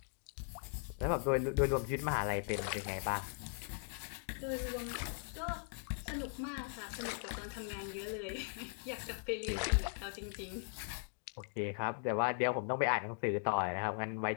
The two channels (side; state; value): right; silent; 52 dB below the other